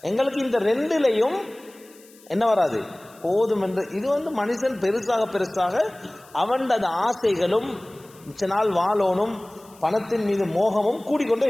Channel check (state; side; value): noise; left; hiss, 26 dB below the sound